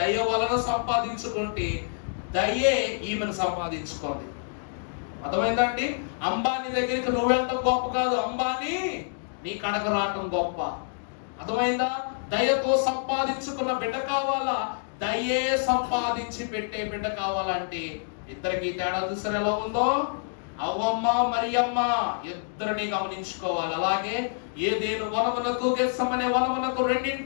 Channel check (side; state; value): right; silent; digital silence